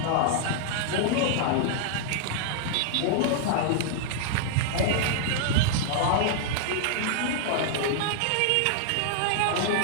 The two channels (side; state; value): both; different; correlation -0.01